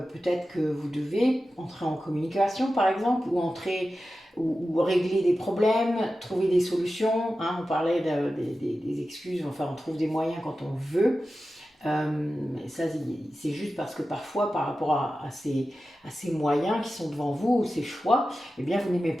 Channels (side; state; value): both; normal; correlation 0.93